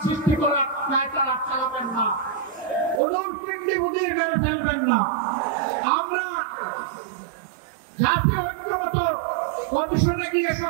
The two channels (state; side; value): drops out; left; at 3.0 s